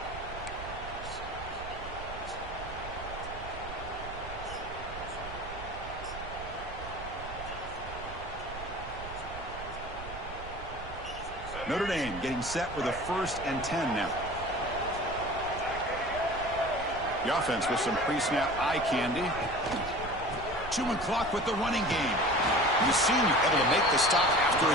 Notre Dame getting set with a 1st and 10 now. The offense with some pre-snap eye candy. Chewing clock with the running game. The senior able to make the stop after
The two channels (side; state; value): right; noise; rumble, 12 dB below the sound